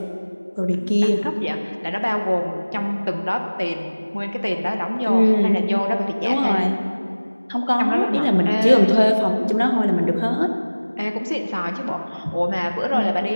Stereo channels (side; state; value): both; inverted; correlation -1.00